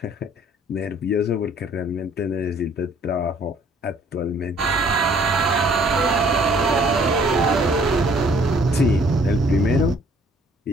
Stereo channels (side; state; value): both; normal; correlation 0.59